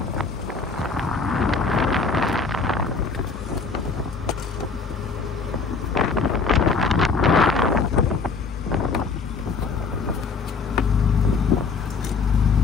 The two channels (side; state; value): right; quieter; 4.7 dB